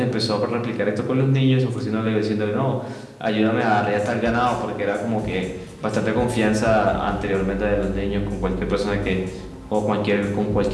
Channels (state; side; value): identical; both; correlation 1.00